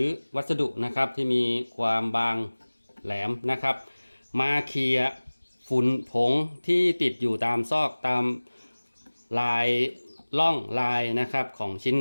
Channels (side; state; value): both; inverted; correlation -1.00